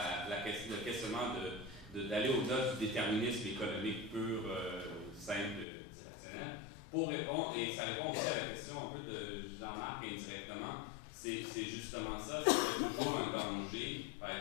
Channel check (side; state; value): right; drops out; at 5.7 s